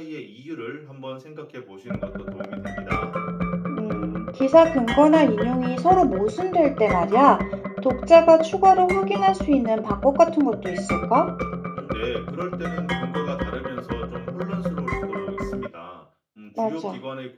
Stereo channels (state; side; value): identical; both; correlation 1.00